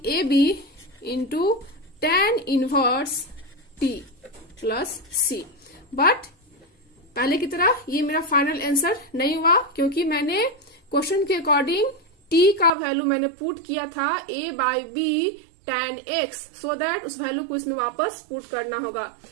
a b into tan inverse t plus C. But पहले की तरह ये मेरा फाइनल आंसर नहीं हुआ, क्योंकि मैंने क्वेश्चन के अकॉर्डिंग t का वैल्यू मैंने पुट किया था a by b tan x, so that उस वैल्यू को इसमें वापस पुट करना होगा।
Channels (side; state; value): left; drops out; at 12.7 s